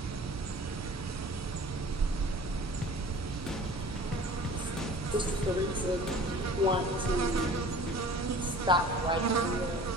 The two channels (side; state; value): both; normal; correlation 0.45